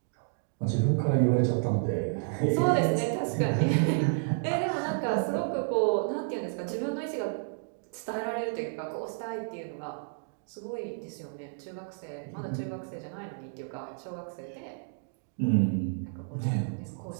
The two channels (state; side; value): silent; left; digital silence